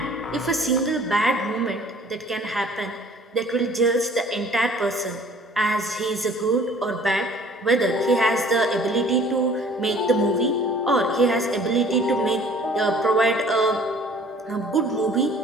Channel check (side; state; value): both; normal; correlation 0.52